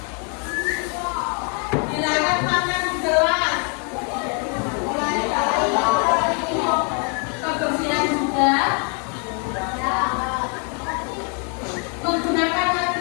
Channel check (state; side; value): quieter; right; 39.0 dB